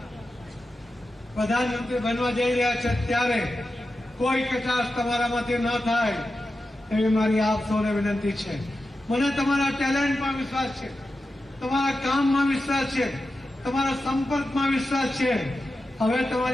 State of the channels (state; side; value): normal; both; correlation 0.91